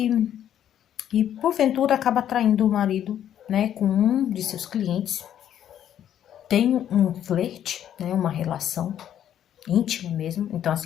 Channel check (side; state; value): right; quieter; 10.4 dB